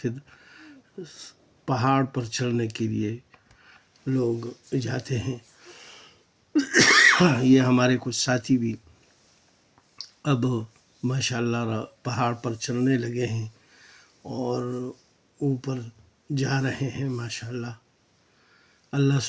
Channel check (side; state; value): both; identical; correlation 1.00